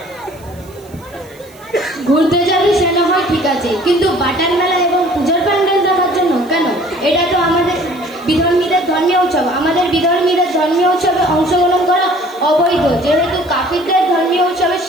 ঘুরতে যাবি সেটা হয় ঠিক আছে, কিন্তু বাটার মেলা এবং পূজার প্যান্ডেল দেখার জন্য কেন? এটা তো আমাদের বিধর্মীদের ধর্মীয় উৎসব। আমাদের বিধর্মীদের ধর্মীয় উৎসবে অংশগ্রহণ করা অবৈধ, যেহেতু কাফিরদের ধর্মীয় উৎসবে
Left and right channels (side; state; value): right; noise; hiss, 26 dB below the sound